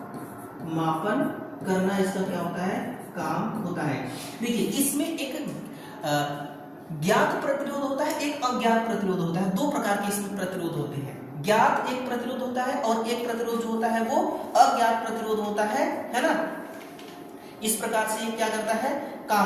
मापन करना इसका क्या होता है? काम होता है। देखिए, इसमें एक ज्ञात प्रतिरोध होता है, एक अज्ञात प्रतिरोध होता है। दो प्रकार के इसमें प्रतिरोध होते हैं। ज्ञात एक प्रतिरोध होता है और एक प्रतिरोध जो होता है वो अज्ञात प्रतिरोध होता है ना। इस प्रकार से ये क्या करता है?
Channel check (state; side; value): identical; both; correlation 1.00